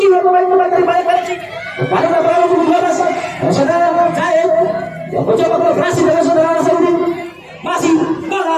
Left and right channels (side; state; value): both; identical; correlation 1.00